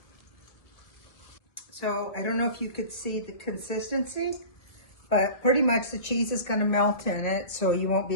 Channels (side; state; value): right; late; 1.9 ms